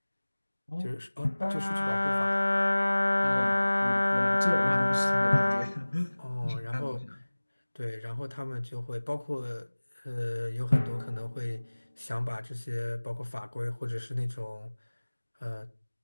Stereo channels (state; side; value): inverted; both; correlation -1.00